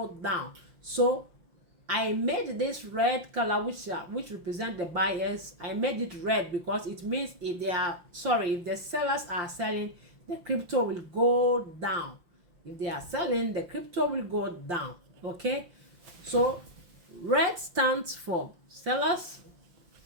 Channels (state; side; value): late; left; 5.8 ms